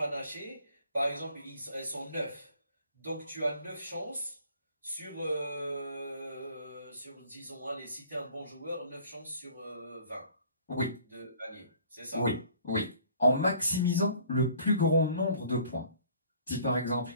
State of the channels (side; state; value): both; inverted; correlation -0.54